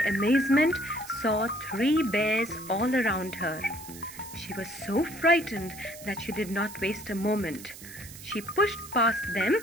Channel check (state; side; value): noise; right; hiss, 15 dB below the sound